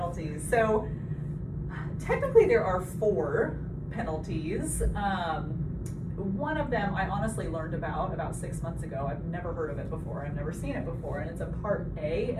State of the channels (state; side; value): identical; both; correlation 1.00